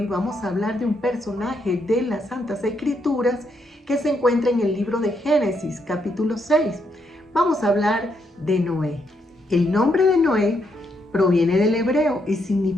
vamos a hablar de un personaje de las Santas Escrituras que se encuentra en el libro de Génesis, capítulo 6. Vamos a hablar de Noé. El nombre de Noé proviene del hebreo y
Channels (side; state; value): both; normal; correlation 0.77